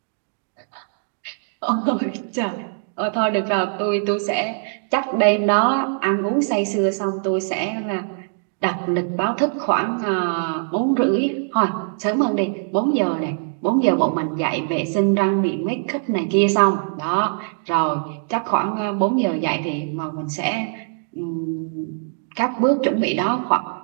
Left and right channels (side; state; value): left; silent; digital silence